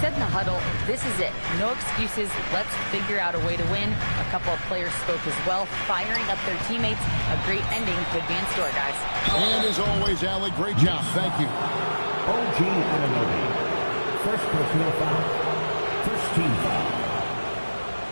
said in the huddle, this is it. No excuses. Let's figure out a way to win. A couple of players spoke as well, firing up their teammates. A great ending could be in store, guys. And as always, Allie, great job. Thank you. OG Anunoby. First personal foul. First team foul.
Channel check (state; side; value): inverted; both; correlation -1.00